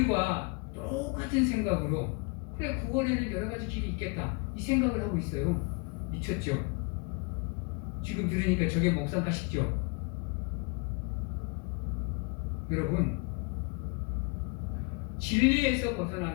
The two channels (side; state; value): right; quieter; 30.4 dB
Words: 똑같은 생각으로 그래, 구원에는 여러 가지 길이 있겠다, 이 생각을 하고 있어요. 미쳤죠? 지금 들으니까 저게 목사가 싶죠? 여러분, 진리에서